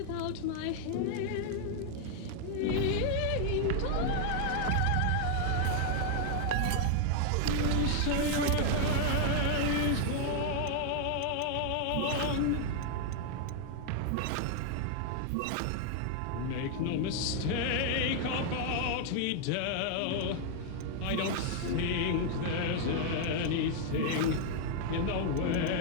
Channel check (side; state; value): both; different; correlation 0.00